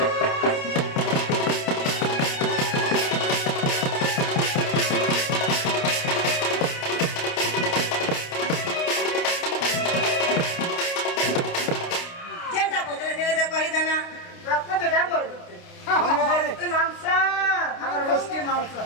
जेंटा पोतले दिले ते कहि देना रक्त बेटा बोल मांसा और वस्ती मांसा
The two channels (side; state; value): right; late; 29 ms